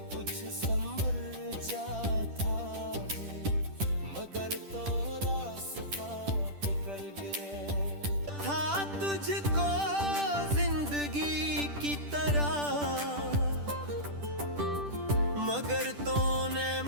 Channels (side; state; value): left; late; 10 ms